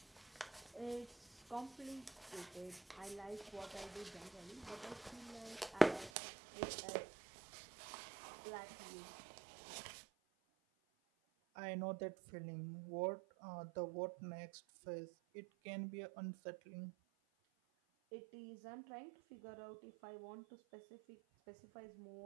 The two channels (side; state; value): left; drops out; at 6.1 s